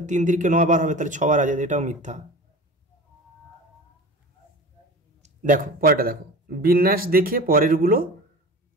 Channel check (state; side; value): normal; both; correlation 0.35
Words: 3 3কে 9 বার হবে, তাহলে 6 বার আছে, এটাও মিথ্যা। দেখো পরেরটা দেখো বিন্যাস দেখে পরেরগুলো